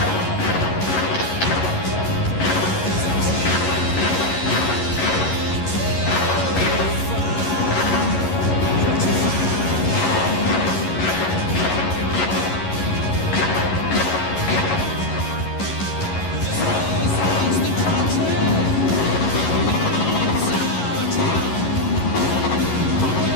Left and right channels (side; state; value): right; late; 11 ms